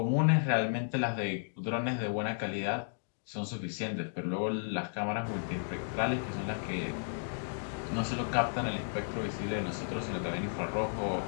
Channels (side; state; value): right; silent; digital silence